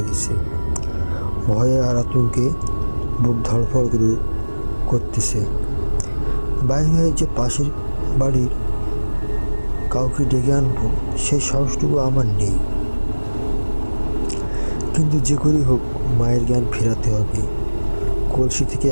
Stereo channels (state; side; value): inverted; both; correlation -1.00